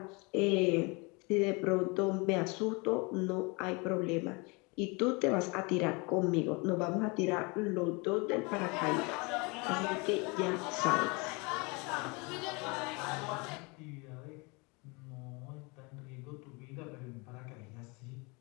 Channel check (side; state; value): right; quieter; 28.7 dB